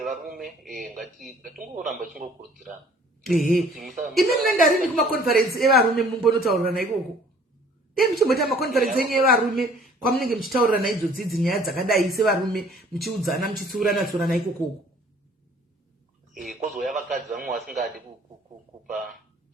varume ngatingoramba chingokurudzirana. Imi munendarini kumakonferensi evarume mumbonotaurirana ikoko? Muchimboita makonferensi enyu evarume kwamunenge muchitaurirana idzodzi nyaya dzakadai sevarume muchiudzana muchitsiurana ikoko? Kozouya vakadzi vamwe vasingadi kupa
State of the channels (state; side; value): normal; both; correlation 0.55